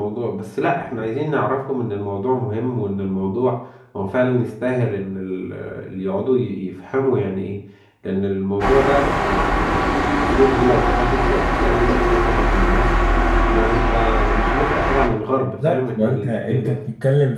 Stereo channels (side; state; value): both; identical; correlation 1.00